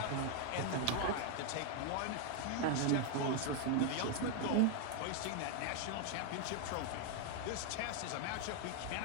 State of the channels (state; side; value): different; both; correlation 0.00